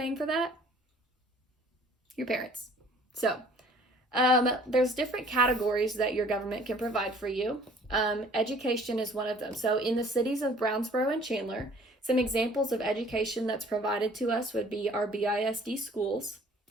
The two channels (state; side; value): normal; both; correlation 0.54